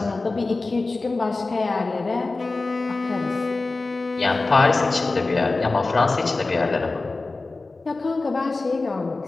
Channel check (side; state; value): right; quieter; 3.5 dB